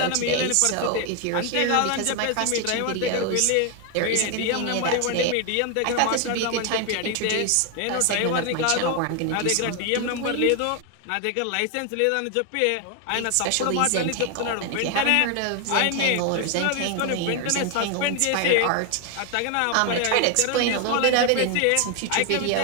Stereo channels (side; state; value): both; different; correlation 0.01